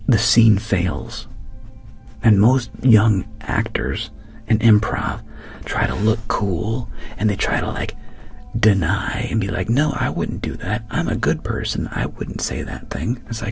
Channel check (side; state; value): both; identical; correlation 1.00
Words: the scene fails. And most young actors in improv try to look cool, and they try to like deny and be like, no, I wouldn't do that. I'm a good person. I wouldn't say that thing. It's